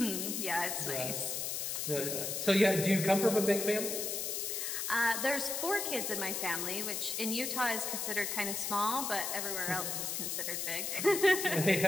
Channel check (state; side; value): noise; left; hiss, 2 dB below the sound